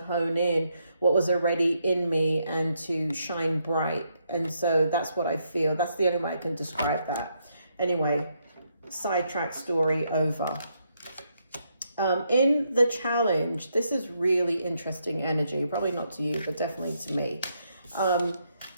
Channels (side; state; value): both; inverted; correlation -0.77